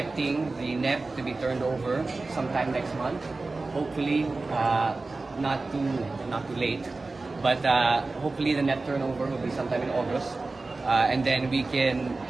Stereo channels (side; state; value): left; quieter; 3.5 dB